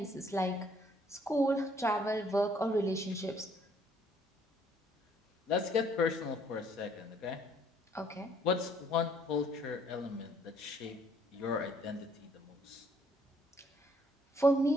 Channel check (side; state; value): both; normal; correlation 0.64